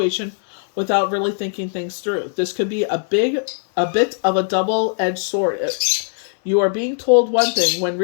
without really thinking things through. This could be a bit of a double-edged sword. You are being told one thing when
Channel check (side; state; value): right; silent; 64 dB below the other